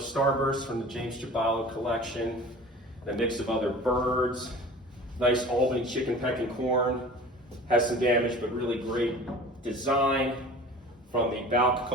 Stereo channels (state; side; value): normal; both; correlation 0.41